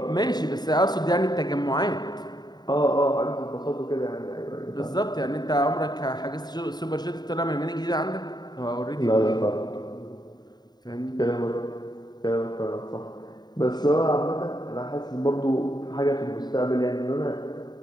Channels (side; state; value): right; late; 0.20 ms